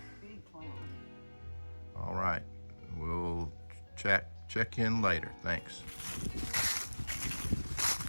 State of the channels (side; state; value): both; inverted; correlation -1.00